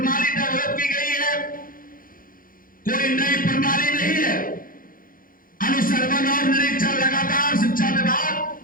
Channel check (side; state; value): right; late; 0.41 ms